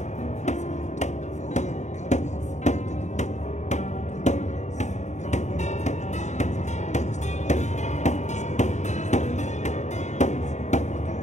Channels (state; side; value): late; right; 0.34 ms